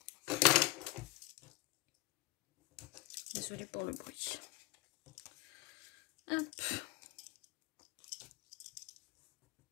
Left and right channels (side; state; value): right; quieter; 19.4 dB